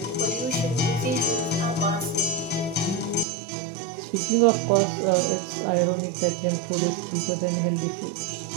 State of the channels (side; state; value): left; drops out; at 3.2 s